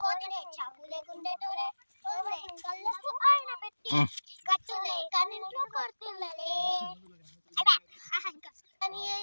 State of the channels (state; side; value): inverted; both; correlation -1.00